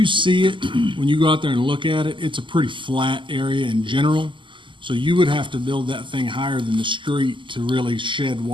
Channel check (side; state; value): left; late; 0.24 ms